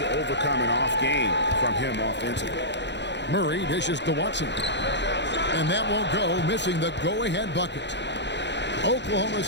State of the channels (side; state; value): right; late; 0.51 ms